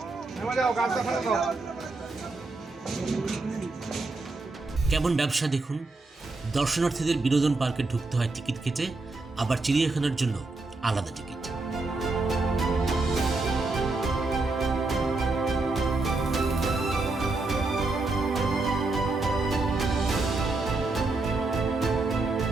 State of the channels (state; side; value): quieter; left; 3.4 dB